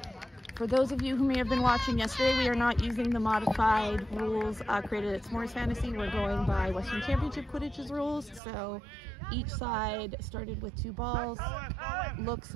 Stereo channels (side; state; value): left; drops out; at 8.4 s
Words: For those of you who may have been watching yesterday, we are not using the modified rules created at S'mores Fantasy. We're going by Western Championship Quidditch's rules. So each side started with 2 balls. Looks